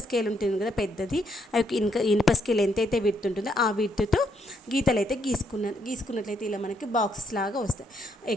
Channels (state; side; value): normal; both; correlation 0.74